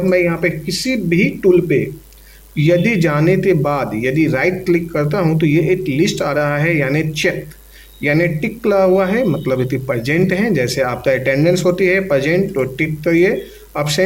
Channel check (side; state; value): both; identical; correlation 1.00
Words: मैं यहाँ पे किसी भी टूल पे यदि जाने के बाद यदि राइट क्लिक करता हूँ तो ये एक लिस्ट आ रहा है, यानी चेक यानी टिक लगा हुआ है, मतलब ये प्रेजेंट है। जैसे आपका अटेंडेंस होती है प्रेजेंट तो टिक करिए,